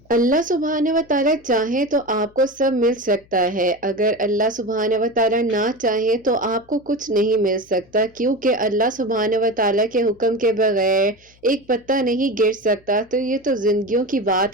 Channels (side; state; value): left; noise; hum, 30 dB below the sound